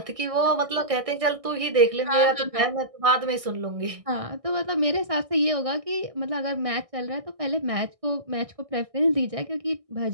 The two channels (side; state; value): left; late; 1.6 ms